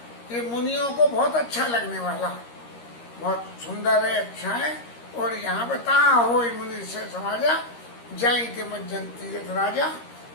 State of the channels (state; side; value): late; right; 13 ms